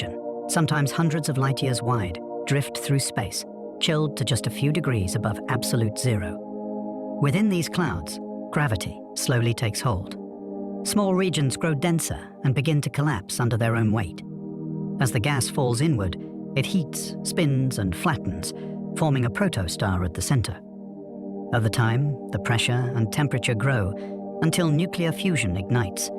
sometimes hundreds of light years wide, drift through space, chilled to just a few degrees above absolute zero. Within these clouds, gravity slowly takes hold. Small regions grow denser and begin to collapse under their own weight. As the gas falls inward, it heats, spins, and flattens, forming a protostar at the center. Over time, the pressure and temperature grow until nuclear fusion ignites,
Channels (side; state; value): both; identical; correlation 1.00